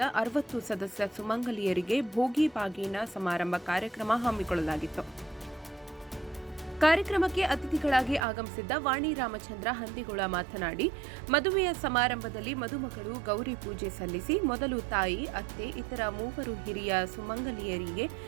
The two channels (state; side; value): drops out; left; at 8.2 s